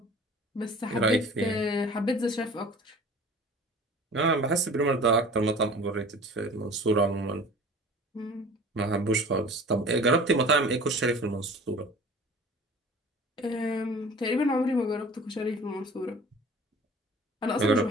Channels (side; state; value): both; normal; correlation 0.44